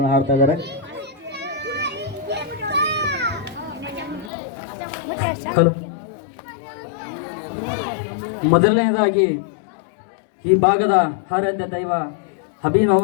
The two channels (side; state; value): right; drops out; at 4.3 s